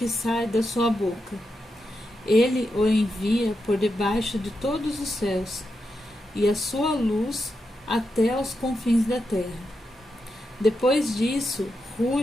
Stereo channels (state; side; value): normal; both; correlation 0.86